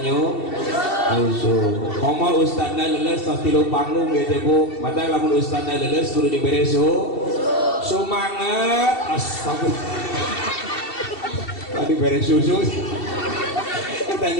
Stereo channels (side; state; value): right; late; 2.7 ms